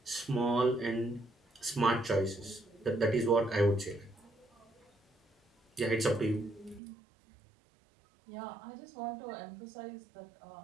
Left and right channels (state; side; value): drops out; left; at 6.8 s